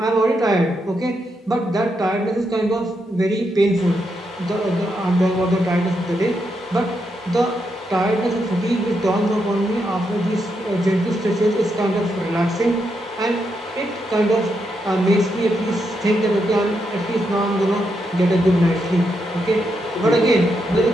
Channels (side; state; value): both; normal; correlation 0.82